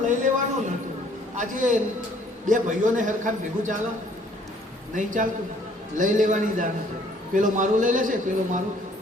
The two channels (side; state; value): both; normal; correlation 0.60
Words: લઈ લેવાનું નહોતું. આજે 2 ભાઈઓને હરખાન ભેગું ચાલો નહીં ચાલતું, લઈ લેવાની દાન છે. પેલો મારું લઈ લેશે, પેલો મારું,